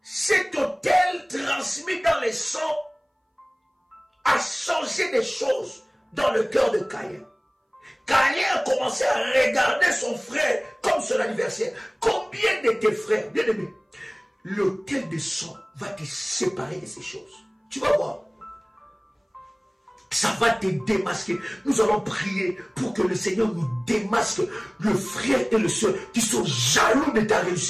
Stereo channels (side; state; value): both; identical; correlation 1.00